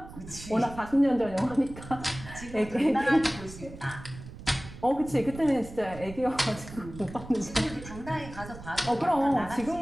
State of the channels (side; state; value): right; noise; rumble, 14 dB below the sound